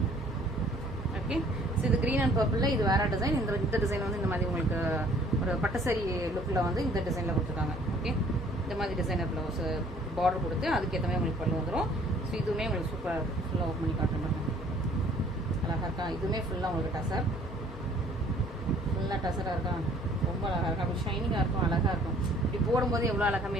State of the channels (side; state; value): both; normal; correlation 0.57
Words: ஓகே, ஸோ இது கிரீன் அண்ட் பர்பிளில் இது வேற டிசைன். இந்த டிசைன் வந்து இந்த மாதிரி உங்களுக்கு ஒரு பட்டசாரி லுக்கில் வந்து இந்த டிசைனில் கொடுத்துருக்காங்க. ஓகே, இந்த மாதிரி டிசைனர் ப்ளவுஸ் பார்டர் கொடுத்து அதுக்கேற்ற மாதிரி உங்களுக்கு பல்லு வந்துடும். ஸோ இதுவுமே உங்களுக்கு சூப்பராக இருக்கும். ஃபுல்லாக ஓப்பன் பண்ணி காட்டுறேன். அழகாக இருக்கா? இதுவுமே ஃபுல்லாக உங்களுக்கு டசர், ஃபுல்லாக டசராக இருக்கா? ரொம்ப அழகாக இருக்கும். அப்படி ஷைனிங்காக இருக்கும், அழகாக இருக்கும். இப்படி போடும்போது எவ்வளோ அழகாக